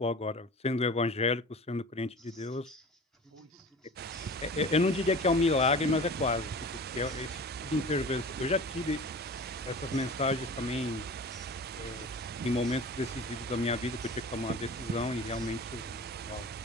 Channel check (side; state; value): both; normal; correlation 0.38